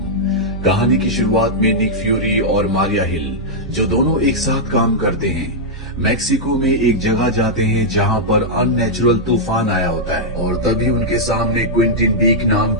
कहानी की शुरुआत में निक फ्यूरी और मारिया हिल, जो दोनों एक साथ काम करते हैं, मैक्सिको में एक जगह जाते हैं जहां पर अननेचुरल तूफान आया होता है और तभी उनके सामने क्विंटिन बीक नाम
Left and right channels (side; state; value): both; normal; correlation -0.07